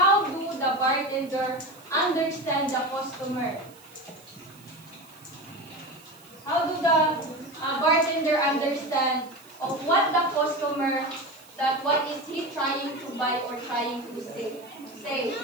do the bartender understand the customer? How do the bartender understand of what the customer, that what is he trying to buy or trying to say?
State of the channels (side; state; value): right; noise; hiss, 24 dB below the sound